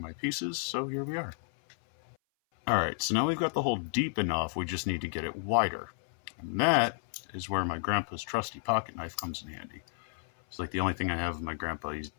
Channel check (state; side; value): silent; right; 57 dB below the other